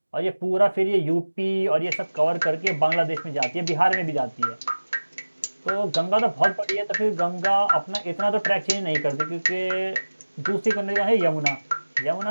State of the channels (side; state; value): both; inverted; correlation -1.00